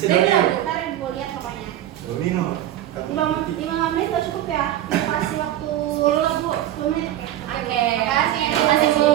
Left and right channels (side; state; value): left; quieter; 12.8 dB